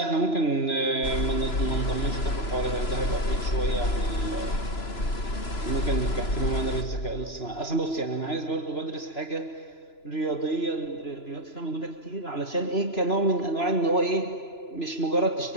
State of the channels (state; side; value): late; right; 3.0 ms